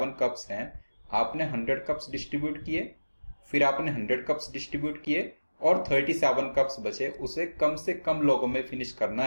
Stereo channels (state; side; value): inverted; both; correlation -1.00